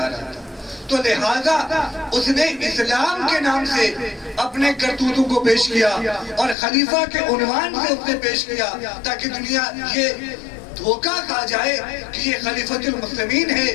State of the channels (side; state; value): right; drops out; at 6.6 s